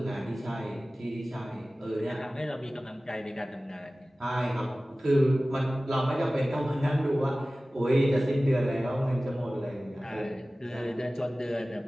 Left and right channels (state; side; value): normal; both; correlation 0.97